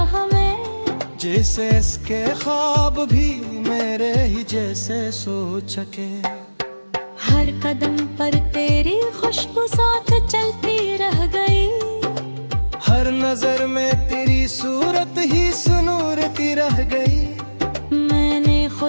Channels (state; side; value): inverted; both; correlation -1.00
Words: में। जैसे इसके ख्वाब भी मेरे ही जैसे सोच सके। हर कदम पर तेरी खुशबू साथ चलती रह गई। हर नजर में तेरी सूरत ही सुनूरती रह गई। मैंने